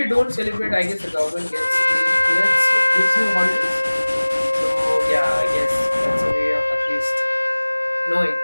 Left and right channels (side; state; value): both; inverted; correlation -1.00